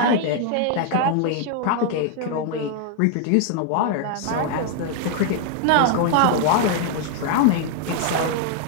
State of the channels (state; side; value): different; both; correlation 0.00